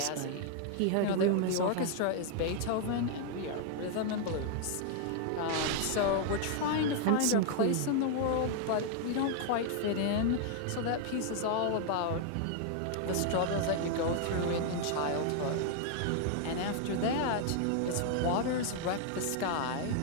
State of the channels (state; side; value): different; both; correlation 0.00